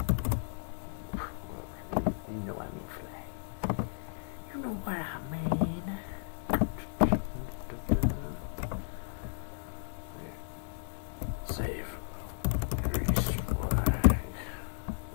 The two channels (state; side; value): silent; right; 55 dB below the other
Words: You know I mean flag. You know what I mean.